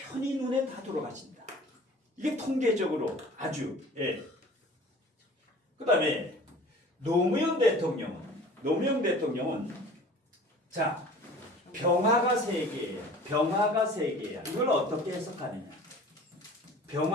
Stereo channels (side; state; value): both; normal; correlation 0.44